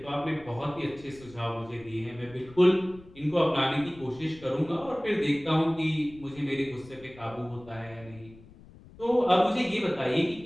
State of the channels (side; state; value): left; noise; rumble, 21 dB below the sound